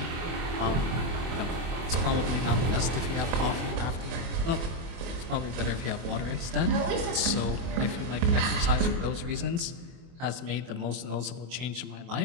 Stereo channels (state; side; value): late; left; 24 ms